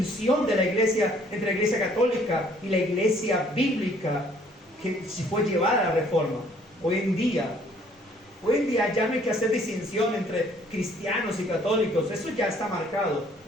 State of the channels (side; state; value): both; normal; correlation 0.60